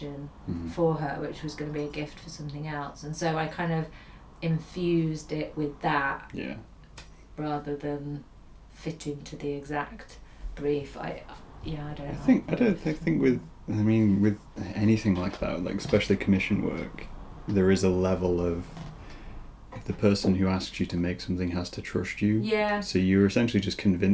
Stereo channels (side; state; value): both; identical; correlation 1.00